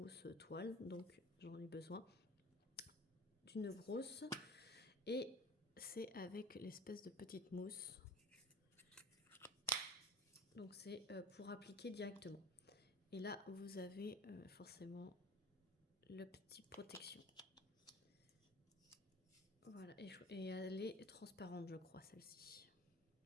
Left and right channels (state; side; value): normal; both; correlation 0.38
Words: toiles, donc j'en ai besoin d'une grosse, et c'est avec l'espèce de petite mousse, donc c'est pour appliquer directement. Et là vous avez forcément le petit protection. Voilà, et elle est transparente, je crois, celle-ci.